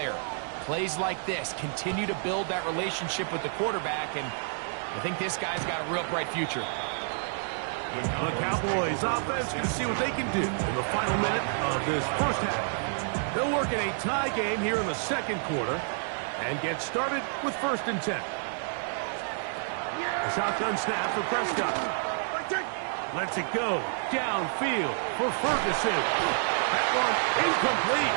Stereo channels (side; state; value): left; silent; digital silence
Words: Plays like this continue to build that relationship with the quarterback, and I think this guy's got a real bright future. The Cowboys offense can see what they can do in the final minute of this first half. They'll work in a tie game here in the second quarter and get started with 1st and 10. A shotgun snap for Prescott. Lets it go downfield for Ferguson. That one incomplete.